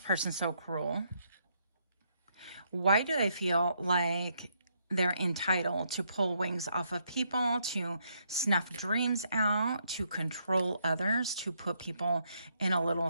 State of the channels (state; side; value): inverted; both; correlation -0.74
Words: so cruel? Why do they feel like they're entitled to pull wings off of people, to snuff dreams out, to control others, to put people in a little